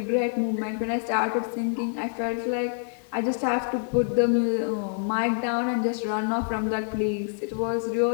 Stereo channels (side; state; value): right; silent; 61 dB below the other